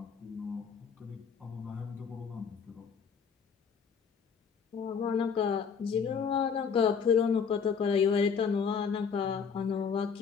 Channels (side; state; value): right; quieter; 6.3 dB